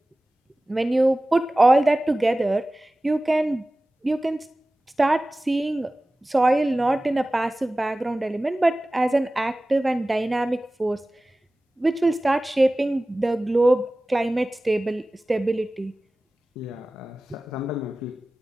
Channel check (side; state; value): both; normal; correlation 0.97